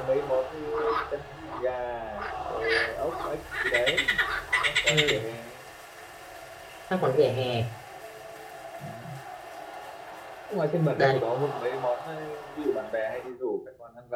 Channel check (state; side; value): identical; both; correlation 1.00